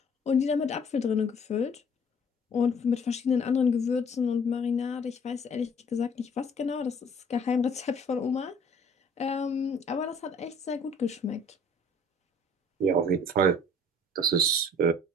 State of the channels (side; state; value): both; normal; correlation 0.54